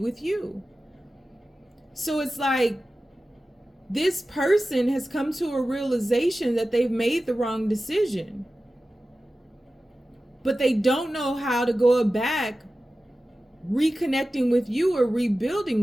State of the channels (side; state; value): both; normal; correlation 0.95